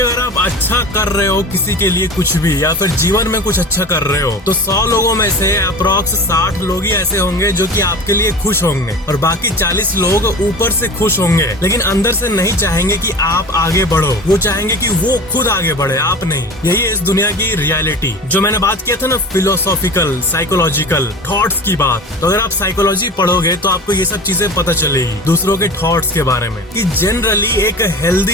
आप अच्छा कर रहे हो किसी के लिए कुछ भी या फिर जीवन में कुछ अच्छा कर रहे हो तो 100 लोगों में से अप्रोक्स 60 लोग ही ऐसे होंगे जो कि आपके लिए खुश होंगे और बाकी 40 लोग ऊपर से खुश होंगे लेकिन अंदर से नहीं चाहेंगे कि आप आगे बढ़ो। वो चाहेंगे कि वो खुद आगे बढ़े, आप नहीं। यही है इस दुनिया की रियलिटी। जो मैंने बात किया था ना फिलोसॉफिकल साइकोलॉजिकल थॉट्स की बात, तो अगर आप साइकोलॉजी पढ़ोगे तो आपको ये सब चीजें पता चलेगी दूसरों के थॉट्स के बारे में, कि जनरली एक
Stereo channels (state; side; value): normal; both; correlation 0.34